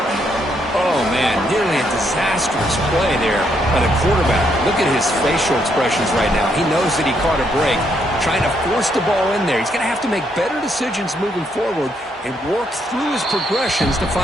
Oh, man, nearly a disastrous play there by the quarterback. Look at his facial expressions right now. He knows that he caught a break, trying to force the ball in there. He's going to have to make better decisions moving forward and work through his progressions to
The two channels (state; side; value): normal; both; correlation 0.75